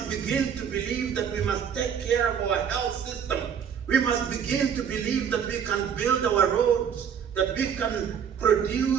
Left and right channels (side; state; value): left; quieter; 7.8 dB